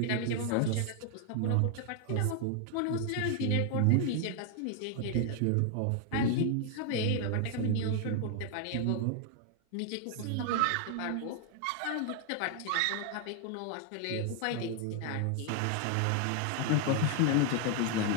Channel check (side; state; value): both; different; correlation 0.00